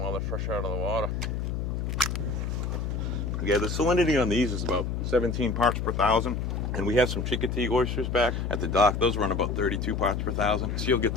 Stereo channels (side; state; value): left; noise; hum, 2 dB below the sound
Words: they're fresh out of the water. Yeah, the salinity on these is about 17 parts per thousand. And we have some Chickatee oysters back at the dock. Those run about 32 parts per thousand. So you'll get